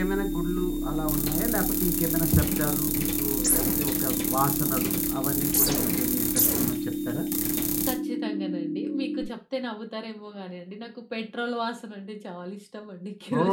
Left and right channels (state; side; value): identical; both; correlation 1.00